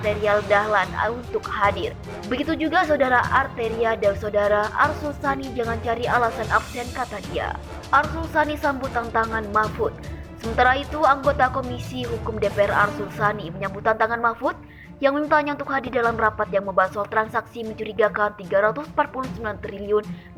Dahlan untuk hadir. Begitu juga saudara Arteria dan saudara Arsul Sani jangan cari alasan absen, kata dia. Arsul Sani sambut tantangan Mahfud. Sementara itu, anggota Komisi Hukum DPR Arsul Sani menyambut tantangan Mahfud yang memintanya untuk hadir dalam rapat yang membahas soal transaksi mencurigakan 349 triliun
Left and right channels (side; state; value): both; identical; correlation 1.00